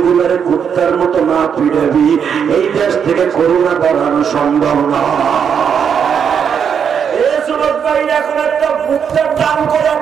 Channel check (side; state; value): left; quieter; 7.4 dB